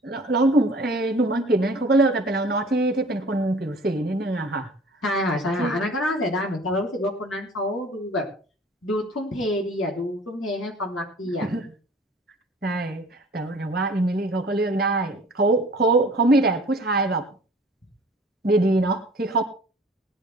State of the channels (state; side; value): normal; both; correlation 0.48